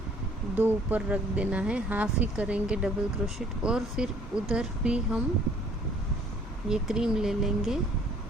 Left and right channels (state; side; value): normal; both; correlation 0.57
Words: 2 ऊपर रख देना है, हाफ ही करेंगे डबल क्रोशेट। और फिर उधर भी हम ये क्रीम ले लेंगे